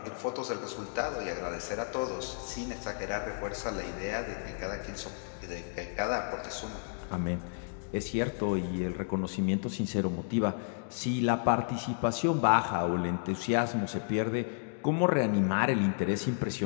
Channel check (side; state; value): right; silent; digital silence